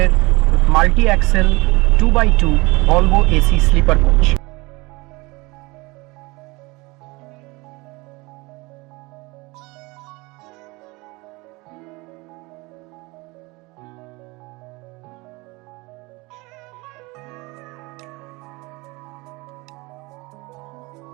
multi axle 2x2 Volvo AC sleeper coach.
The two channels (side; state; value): left; quieter; 24.2 dB